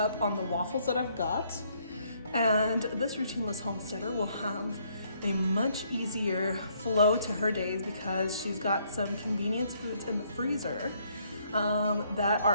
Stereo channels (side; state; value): both; inverted; correlation -0.68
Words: on the waffles that I've got, and this routineless homesteader will have a much easier flow to her days because she's got some convenience foods in the freezer that